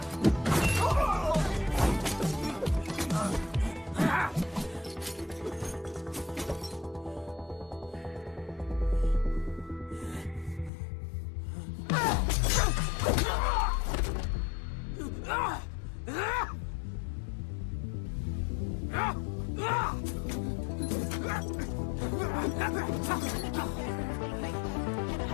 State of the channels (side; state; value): right; drops out; at 10.7 s